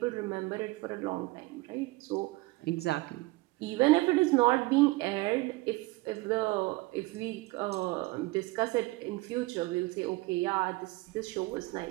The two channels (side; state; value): left; quieter; 21.6 dB